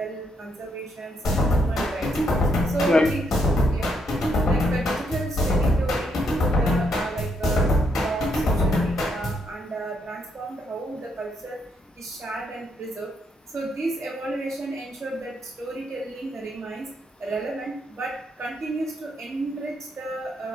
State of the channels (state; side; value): normal; both; correlation 0.75